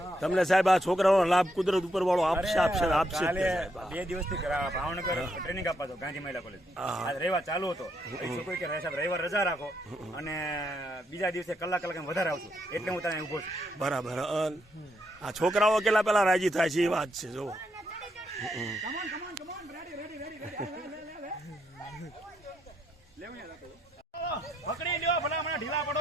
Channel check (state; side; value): normal; both; correlation 0.78